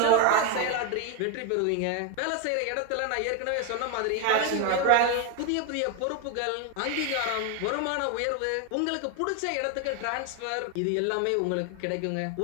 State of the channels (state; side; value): different; both; correlation 0.01